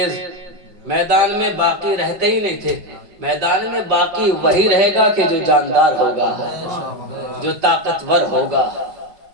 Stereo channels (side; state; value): left; late; 5.4 ms